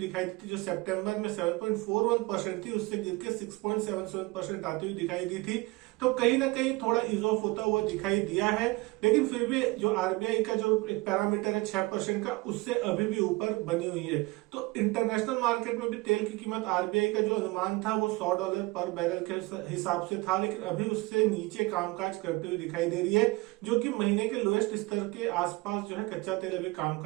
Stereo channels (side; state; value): left; quieter; 23.1 dB